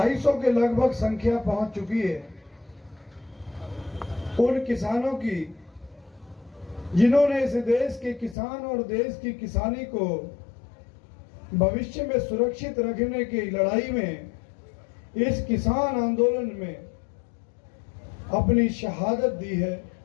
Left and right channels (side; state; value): right; drops out; at 8.3 s